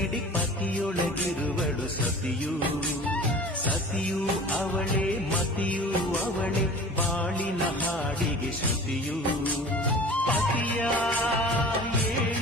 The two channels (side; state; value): both; normal; correlation 0.41